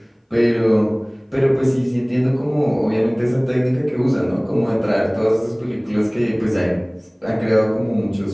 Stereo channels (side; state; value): both; identical; correlation 1.00